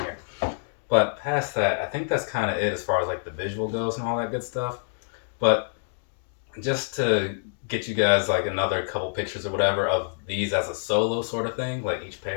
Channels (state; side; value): silent; right; digital silence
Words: here. But past that, I think that's kind of it as far as like the visual goes and all that good stuff. But just to get you guys like another couple pictures or whatever of these as a solo sort of thing, like each